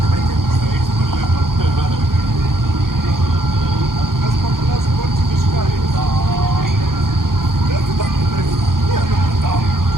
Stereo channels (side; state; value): left; late; 0.91 ms